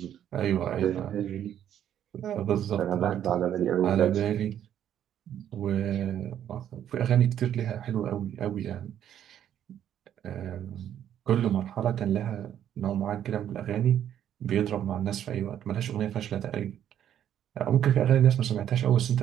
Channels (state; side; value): quieter; left; 10.3 dB